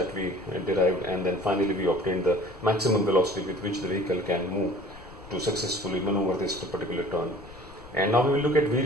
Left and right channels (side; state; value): left; noise; rumble, 20 dB below the sound